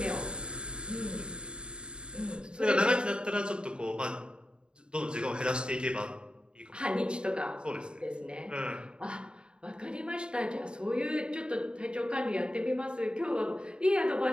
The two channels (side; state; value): left; late; 0.051 ms